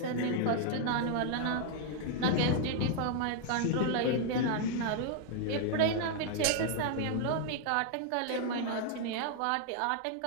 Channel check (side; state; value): both; different; correlation 0.00